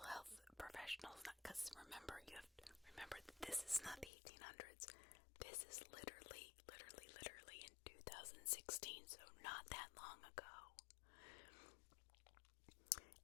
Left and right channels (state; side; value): drops out; right; at 4.1 s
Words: health professionals? Because remember, you have to remember that this is not the 1800s. This is literally in 2016, so not that long ago.